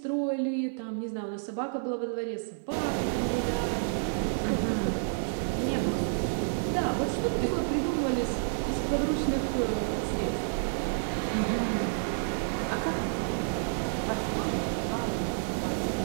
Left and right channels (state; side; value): silent; left; digital silence